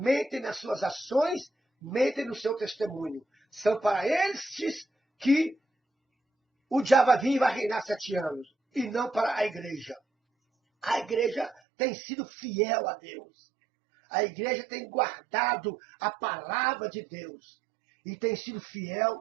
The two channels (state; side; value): drops out; left; at 11.6 s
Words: nas suas ações, mentem no seu testemunho. São para estes que o diabo vai vir e vai reinar 7 anos, e não para a igreja. A igreja tem sido fiel a Deus. A igreja tem guardado a palavra de Deus e tem sido